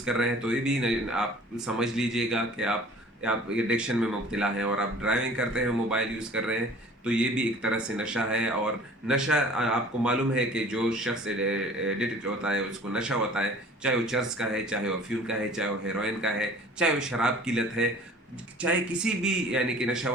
कर रहे हैं तो ये भी आप समझ लीजिएगा कि आप एडिक्शन में मुब्तला हैं। और आप ड्राइविंग करते हैं मोबाइल यूज़ कर रहे हैं तो ये भी एक तरह से नशा है। और नशा आपको मालूम है कि जो शख्स एडिक्ट होता है उसको नशा होता है, चाहे वो चर्च का है, चाहे वो अफीम का है, चाहे वो हेरोइन का है, चाहे वो शराब की लत है, चाहे किसी भी यानी कि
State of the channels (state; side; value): normal; both; correlation 0.47